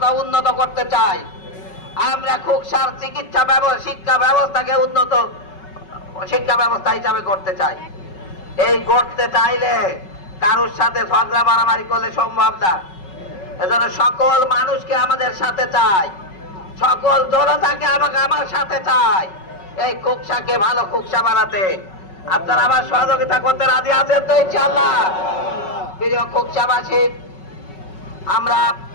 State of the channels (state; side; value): late; right; 5.3 ms